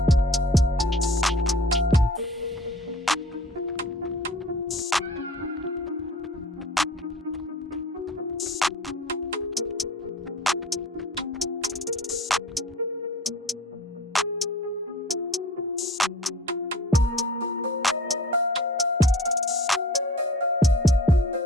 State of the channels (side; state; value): both; normal; correlation 0.45